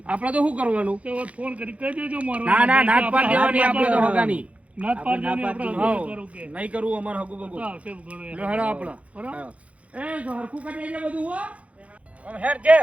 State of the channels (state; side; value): late; left; 0.065 ms